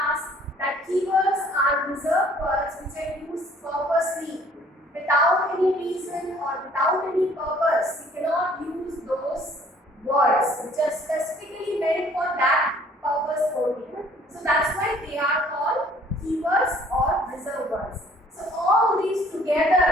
that keywords are reserved words which are used purposely. Without any reason or without any purpose, you cannot use those words which are specifically meant for that purpose only. So that's why they are called keywords or reserved words. So all these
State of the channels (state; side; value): normal; both; correlation 0.57